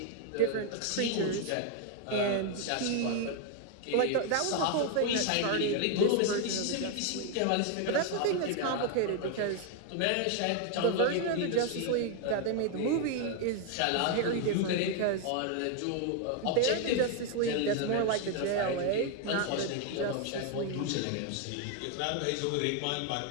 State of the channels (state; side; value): different; both; correlation 0.00